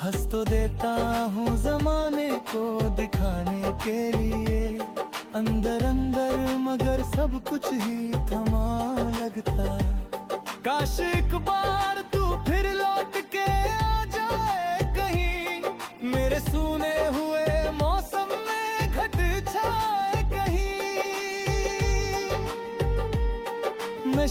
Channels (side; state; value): both; identical; correlation 1.00